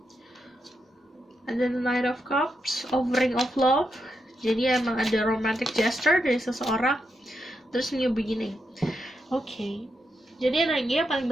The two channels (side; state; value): both; normal; correlation 0.84